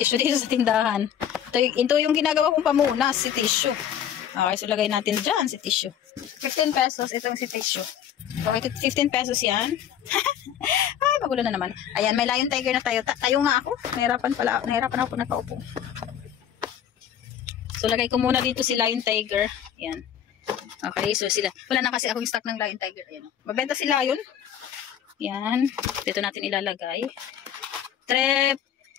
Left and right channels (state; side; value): quieter; right; 9.6 dB